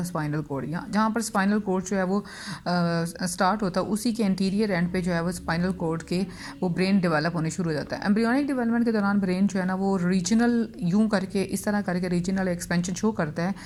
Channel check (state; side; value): identical; both; correlation 1.00